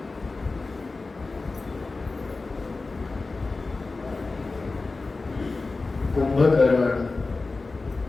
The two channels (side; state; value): right; quieter; 3.7 dB